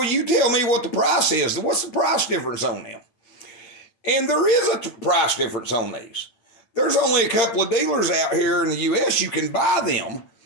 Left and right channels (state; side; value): late; right; 8.7 ms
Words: you tell me what the price is. What's the price difference on them?" And there is a price difference on these. There's only a couple of dealers out here in the U.S. you can buy them